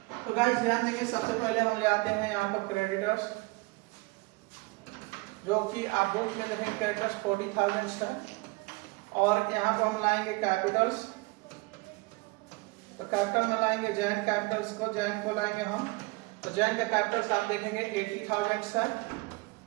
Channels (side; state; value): left; quieter; 25.6 dB